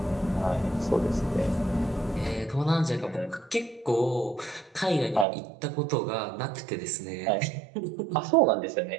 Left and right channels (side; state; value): left; drops out; at 5.2 s